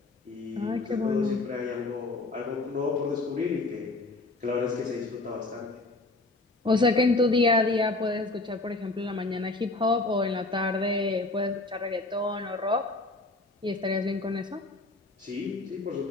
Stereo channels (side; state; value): right; quieter; 3.1 dB